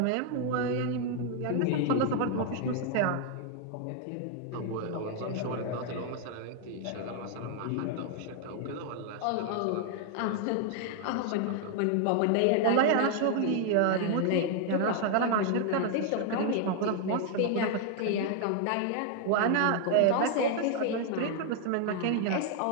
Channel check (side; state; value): both; different; correlation 0.00